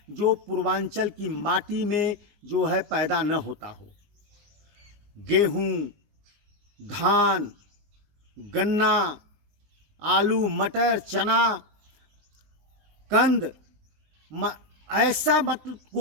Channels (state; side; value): late; left; 19 ms